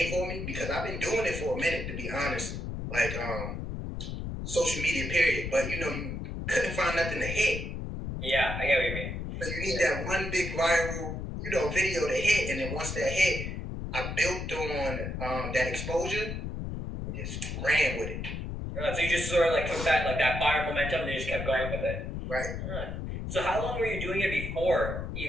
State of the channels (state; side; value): noise; left; rumble, 5 dB below the sound